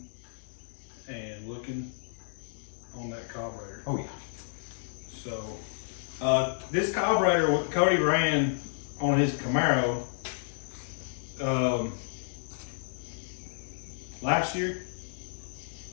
and looking on that carburetor. Oh yeah. So this carburetor what Cody ran on his Camaro last year,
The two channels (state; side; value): silent; right; digital silence